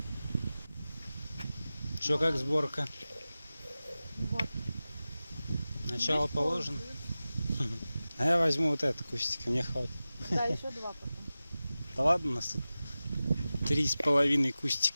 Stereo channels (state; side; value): inverted; both; correlation -0.96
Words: Что, как сборка? Вот. Начало положено? А я возьму вот это кустик, мне хватит. Да, еще два потом. Да ладно, у нас тут 3,5